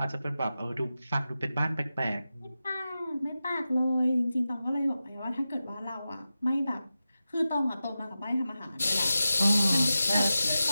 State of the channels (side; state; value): both; inverted; correlation -0.93